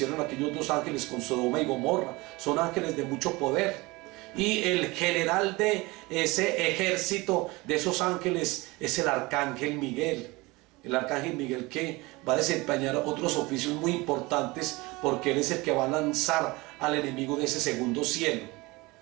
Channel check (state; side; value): quieter; left; 22.9 dB